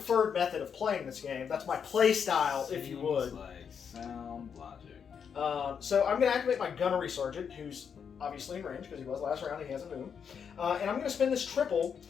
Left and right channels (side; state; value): right; quieter; 7.1 dB